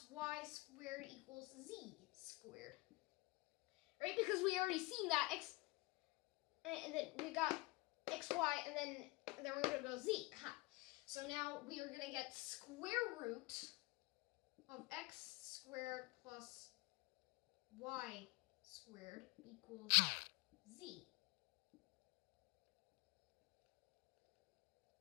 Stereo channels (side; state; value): right; quieter; 23.0 dB